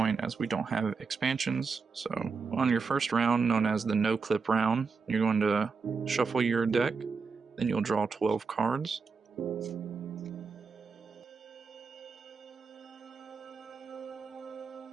as we don't have expansions. So on your first round, known as the no clip round, you're going to shuffle your deck, then you'll draw 12 cards.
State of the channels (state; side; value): quieter; left; 5.0 dB